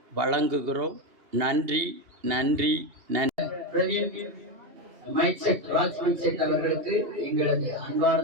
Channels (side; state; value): left; late; 2.9 ms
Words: வழங்குகிறோம். நன்றி நன்றி நன்றி. அவர்களுக்கு எங்களது